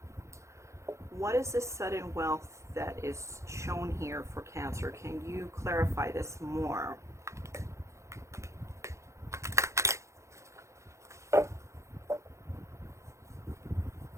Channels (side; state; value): left; late; 0.14 ms